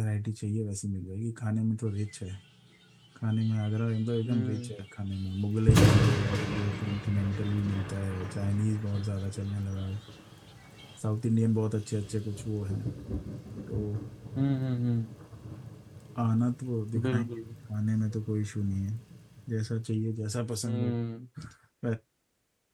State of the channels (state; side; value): identical; both; correlation 1.00